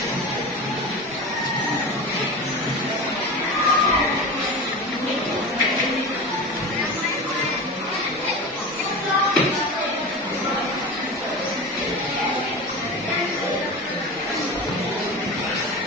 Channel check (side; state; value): both; normal; correlation 0.29